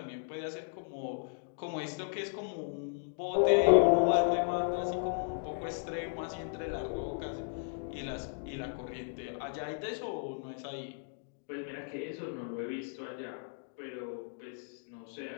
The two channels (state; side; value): silent; right; digital silence